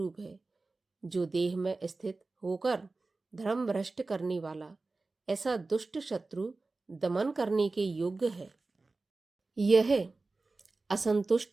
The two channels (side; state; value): left; quieter; 3.5 dB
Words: है, जो देह में स्थित होकर धर्म भ्रष्ट करने वाला ऐसा दुष्ट शत्रु दमन करने के योग्य है। यह